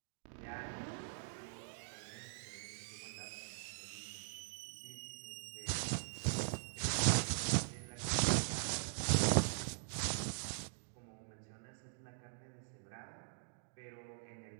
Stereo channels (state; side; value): silent; left; digital silence